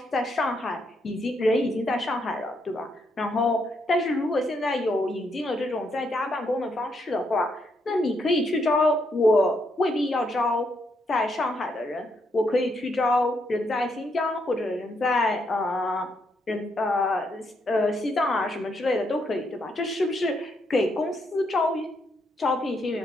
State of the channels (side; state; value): both; normal; correlation 0.77